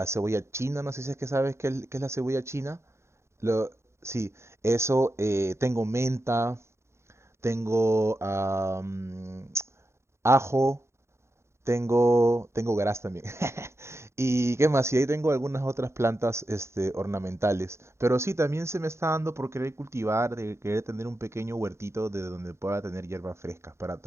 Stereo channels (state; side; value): late; left; 0.13 ms